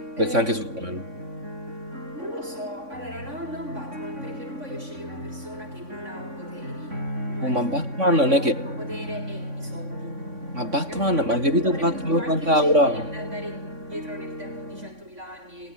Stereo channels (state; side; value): late; left; 3.6 ms